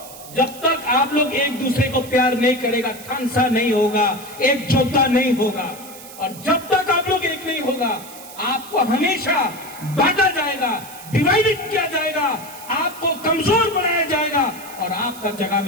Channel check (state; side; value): noise; right; hiss, 16 dB below the sound